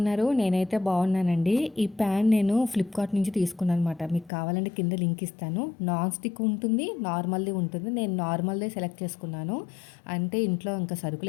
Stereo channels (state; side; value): drops out; right; at 4.3 s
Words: నేనైతే బాగున్నానండి. ఈ ప్యాన్ నేను ఫ్లిప్కార్ట్ నుంచి తీసుకున్నాను అనమాట. మీకు కావాలంటే కింద లింక్ ఇస్తాను. నాన్ స్టిక్ ఉంటుంది, నార్మల్ది ఉంటుంది. నేను నార్మల్దే సెలెక్ట్ చేసుకున్నాను. అంటే ఇంట్లో ఇంకా